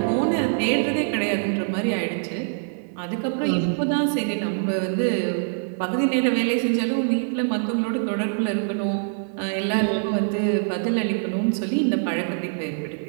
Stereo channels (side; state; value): left; silent; digital silence